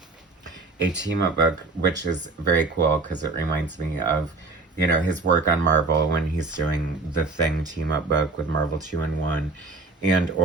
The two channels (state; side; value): quieter; left; 3.7 dB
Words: team up book, which is very cool because it reminds me of, his work on Marvel when he's doing the Thing team up book with Marvel 2-in-1 and